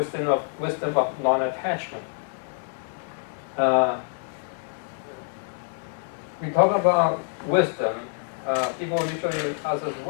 of non-attachment. We talk about wisdom. People usually ask us,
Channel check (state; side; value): silent; right; digital silence